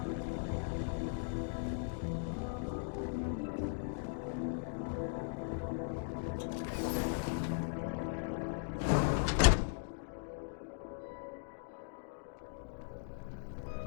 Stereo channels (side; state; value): right; silent; digital silence